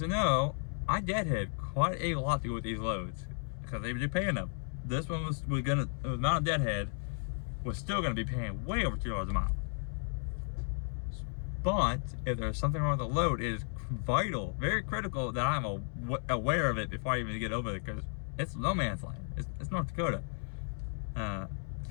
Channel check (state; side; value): silent; right; 55 dB below the other